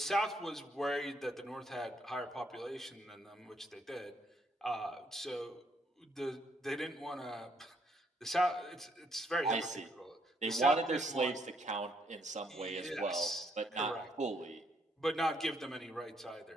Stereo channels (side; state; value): both; normal; correlation 0.71